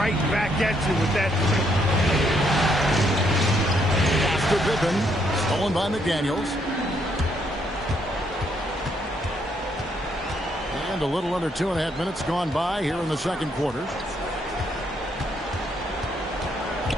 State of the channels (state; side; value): normal; both; correlation 0.73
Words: back at you with that. After Pippen, stolen by McDaniels. And a little under 2.5 minutes gone by here in the second quarter.